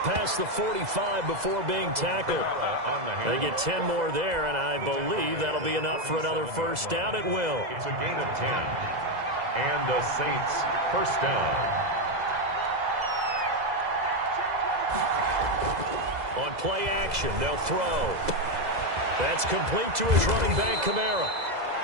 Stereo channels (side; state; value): left; late; 2.0 ms